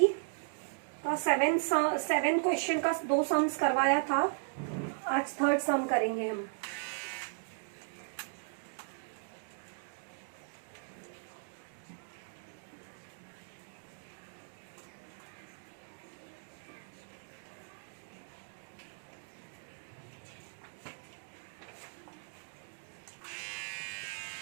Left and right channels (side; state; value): left; silent; digital silence